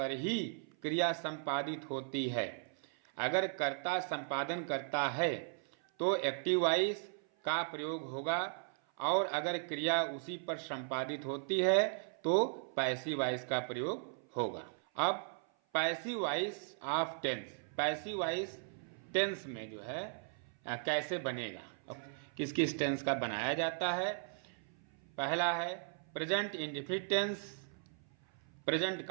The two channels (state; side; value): silent; left; 53 dB below the other